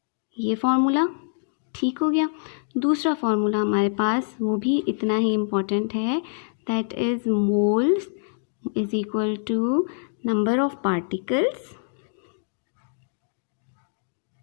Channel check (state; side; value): silent; right; digital silence